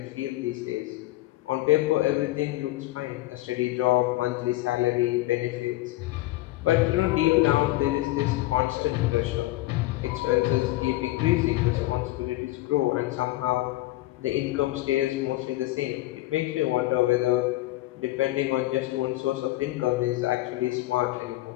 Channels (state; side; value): quieter; right; 17.7 dB